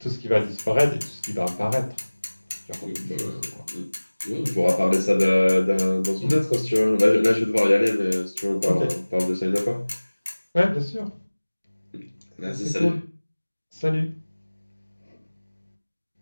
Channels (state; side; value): inverted; both; correlation -1.00